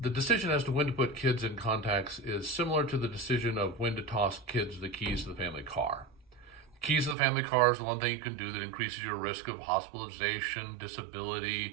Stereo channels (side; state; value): left; drops out; at 7.2 s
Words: decision as to when to put kids in contacts is similar to the decision of when to toss kids the keys to the family car. The keys to the family car is the one thing you can do that increases your risk of hospitalization,